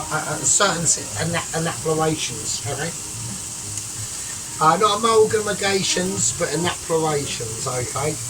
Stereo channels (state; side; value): identical; both; correlation 1.00